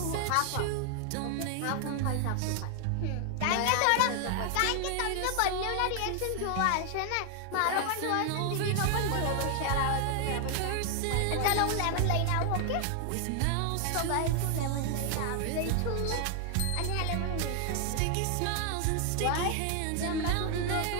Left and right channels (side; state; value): both; different; correlation 0.00